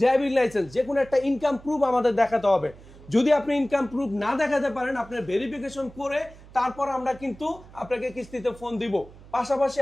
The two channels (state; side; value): noise; right; hum, 21 dB below the sound